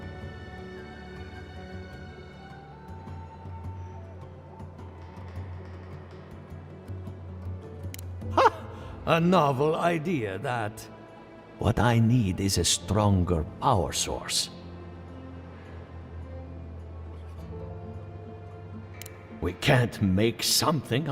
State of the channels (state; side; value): identical; both; correlation 1.00